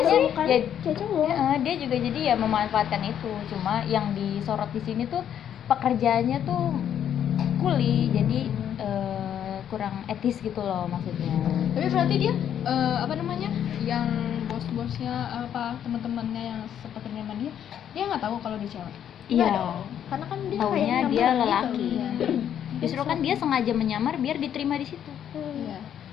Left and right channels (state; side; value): quieter; right; 9.6 dB